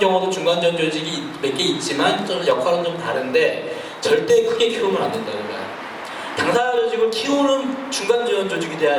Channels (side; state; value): both; identical; correlation 1.00